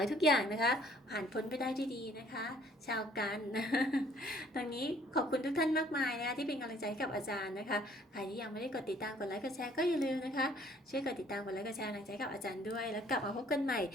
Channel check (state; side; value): normal; both; correlation 0.59